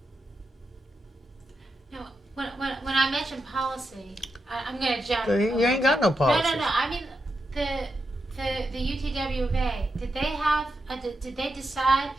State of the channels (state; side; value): normal; both; correlation 0.86